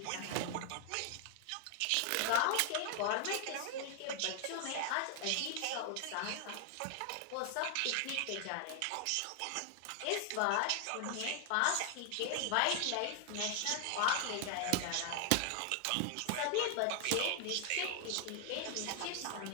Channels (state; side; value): different; both; correlation 0.00